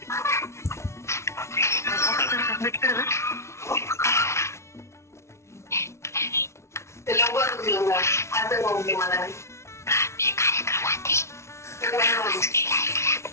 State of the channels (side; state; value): right; late; 0.13 ms